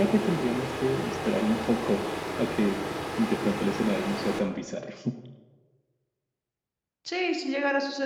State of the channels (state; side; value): identical; both; correlation 1.00